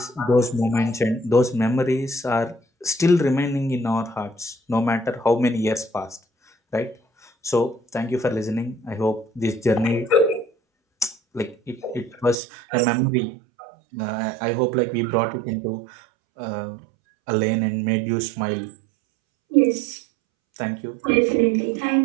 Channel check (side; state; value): left; drops out; at 12.4 s